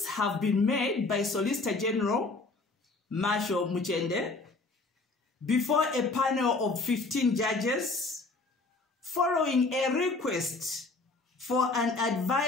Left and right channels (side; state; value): right; quieter; 3.6 dB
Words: have been made by Solicitor General Marshal Muchende before a panel of 15 judges following a request for an